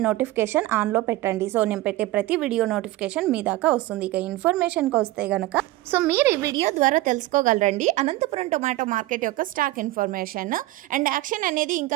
నోటిఫికేషన్ ఆన్లో పెట్టండి। సో నేను పెట్టే ప్రతి వీడియో నోటిఫికేషన్ మీ దాకా వస్తుంది। ఇక ఇన్ఫర్మేషన్కి వస్తే గనక మీరు ఈ వీడియో ద్వారా తెలుసుకోగలరండి అనంతపురం టొమాటో మార్కెట్ యొక్క స్టాక్ ఇన్ఫర్మేషన్ అండ్ యాక్షన్ అనేది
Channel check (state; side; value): quieter; left; 17.2 dB